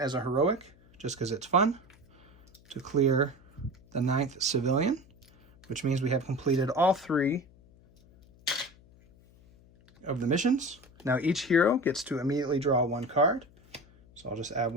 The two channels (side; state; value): left; noise; hum, 27 dB below the sound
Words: a heroic, just because it's fun, to clear the 9th civilian, which means we have completed all 3 of the missions. Now each hero gets to immediately draw 1 card. So I'll just add